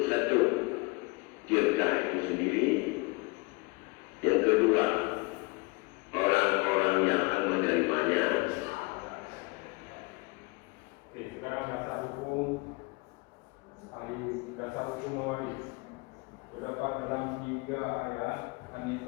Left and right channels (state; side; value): quieter; right; 26.3 dB